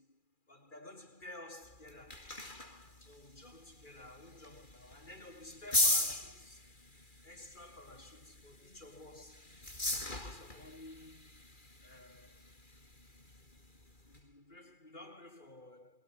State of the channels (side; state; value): right; late; 2.4 ms